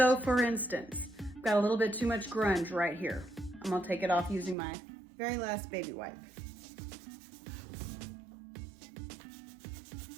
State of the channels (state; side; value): drops out; left; at 4.5 s